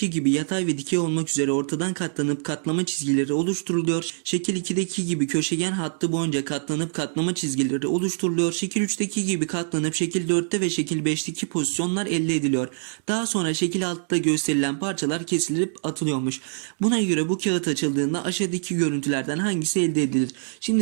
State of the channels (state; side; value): silent; left; digital silence